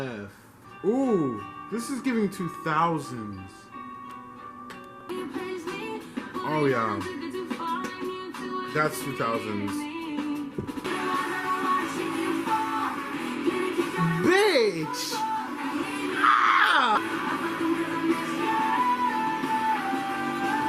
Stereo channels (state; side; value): identical; both; correlation 1.00